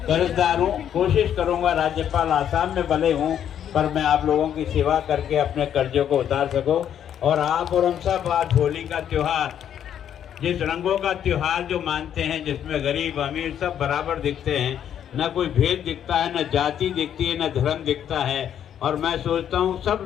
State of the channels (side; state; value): right; quieter; 9.6 dB